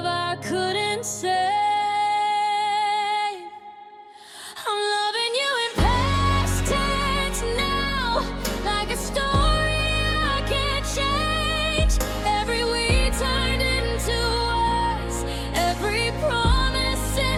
I couldn't save. I'm loving you in past tense now, like a story I can't change. Every we turned into us, every promise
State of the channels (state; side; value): identical; both; correlation 1.00